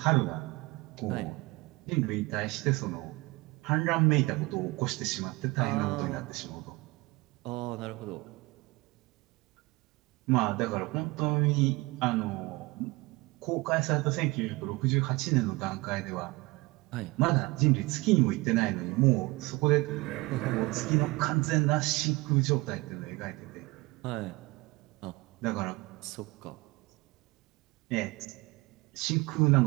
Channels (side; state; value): left; quieter; 23.0 dB